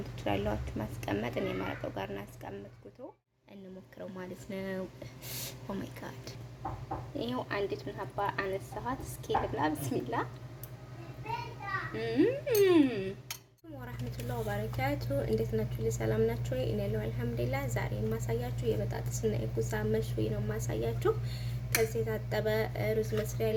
ትችላላችሁ፣ ማስቀመጥ። እኔ መረቁ ጋር እናስቀምጥኩት እንሞክረው ማለት ነው። ኦ ማይ ጋድ ይሄው አንዲት ሀባ አነሳኋት። እስኪ ልብላ። ብስሚላ ወራህመቱላሂ ወበረካቱ። እንዴት ናችሁ? ሰላም ናችሁ? እኔ ያለው አልሐምዱሊላህ። ዛሬ የማሳያችሁ የበጣጥስና የጉዛ መሽዊ ነው የማሳያችሁ። ከዚህ የታጠበ ሩዝ መስሪያ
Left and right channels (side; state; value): both; identical; correlation 1.00